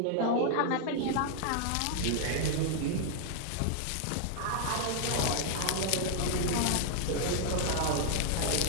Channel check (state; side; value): different; both; correlation 0.00